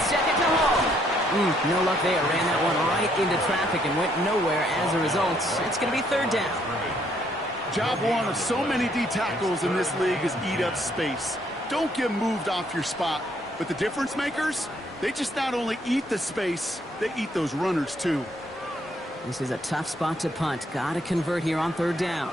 to Hall. No luck there. Ran that one right into traffic and went nowhere as a result. It's going to be 3rd down. Job one of so many D tackles in this league is eat up space. Don't get moved off your spot. But the difference makers, they just not only eat the space, they eat those runners too. This is a tough spot to punt. Got to convert here on 3rd down.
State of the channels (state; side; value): normal; both; correlation 0.69